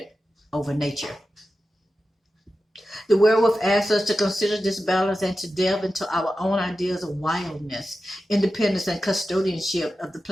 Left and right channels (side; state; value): both; normal; correlation 0.93